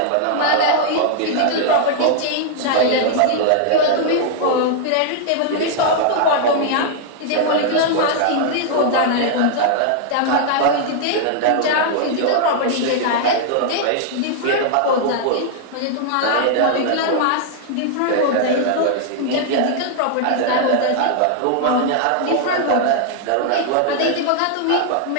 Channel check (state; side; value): different; both; correlation -0.01